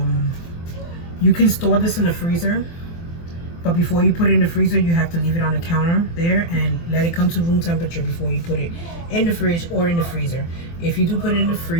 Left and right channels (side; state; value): right; late; 24 ms